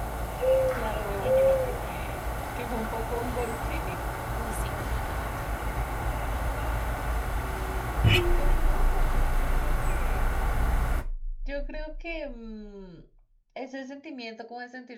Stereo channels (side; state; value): both; identical; correlation 1.00